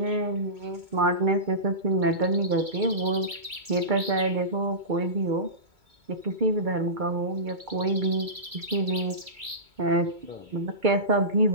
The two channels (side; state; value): left; late; 2.2 ms